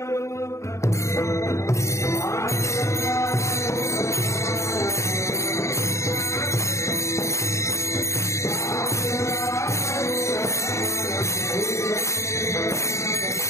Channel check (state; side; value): late; right; 0.14 ms